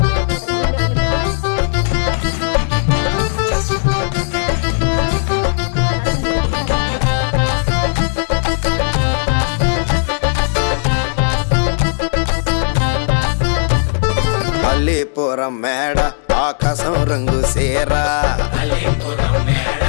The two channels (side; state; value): right; silent; digital silence